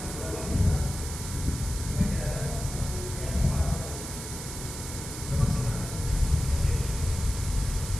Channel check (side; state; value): right; noise; hiss, 9 dB below the sound